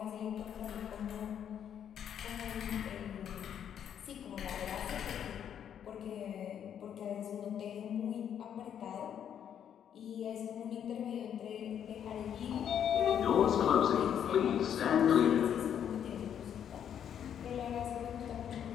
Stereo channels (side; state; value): right; quieter; 9.1 dB